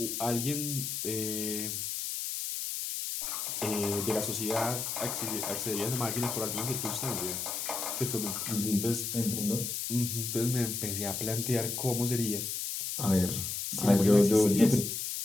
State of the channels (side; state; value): left; noise; hiss, 3 dB below the sound